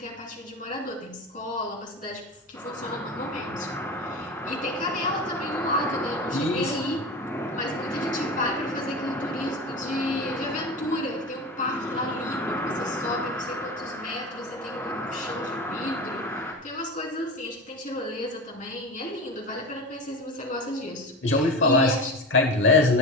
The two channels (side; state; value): both; normal; correlation 0.28